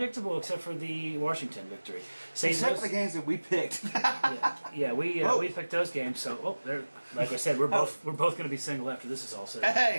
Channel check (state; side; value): inverted; both; correlation -1.00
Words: except for the Washington victory. Except for the games that we picked. we picked those games. So, like I said, we're both going to be single after this is all said.